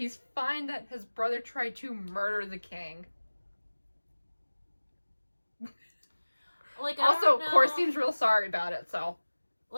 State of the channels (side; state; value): both; inverted; correlation -1.00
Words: fine that his brother tried to murder the king. Like, also, Cor seems real sorry about it, so.